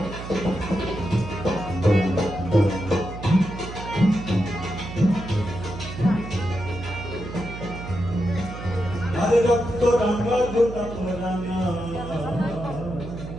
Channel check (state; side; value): noise; right; hum, 10 dB below the sound